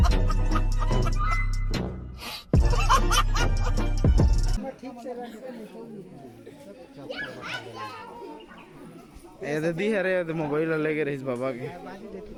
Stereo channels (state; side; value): identical; both; correlation 1.00